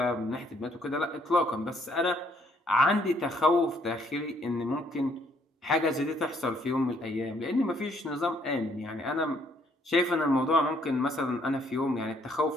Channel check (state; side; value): normal; both; correlation 0.67